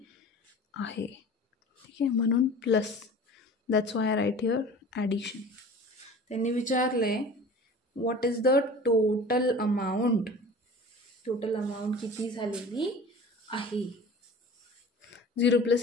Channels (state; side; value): normal; both; correlation 0.40